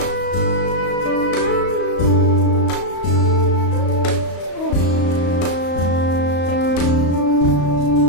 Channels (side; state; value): right; late; 35 ms